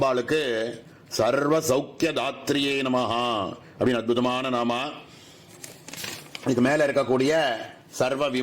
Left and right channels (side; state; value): both; identical; correlation 1.00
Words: சர்வ சௌக்கிய தாத்ரியே நமஹா அப்படின்னு அற்புதமான நாமா. இதுக்கு மேல இருக்கக்கூடிய சர்வ